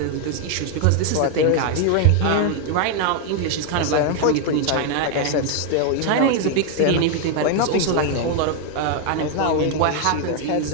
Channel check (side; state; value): both; different; correlation 0.00